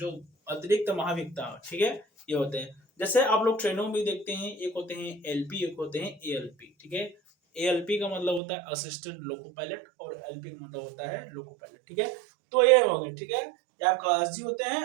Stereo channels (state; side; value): drops out; left; at 8.4 s